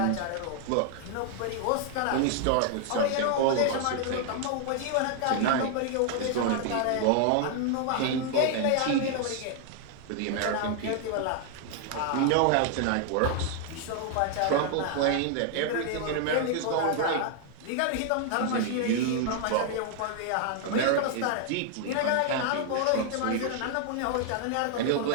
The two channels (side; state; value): both; different; correlation 0.00